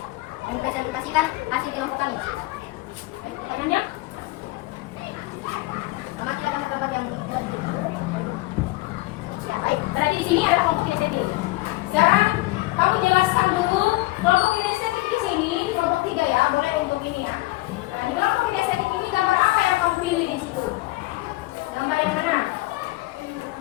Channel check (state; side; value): quieter; right; 20.1 dB